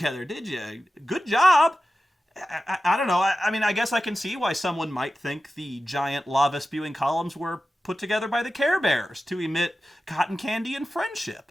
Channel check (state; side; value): normal; both; correlation 0.93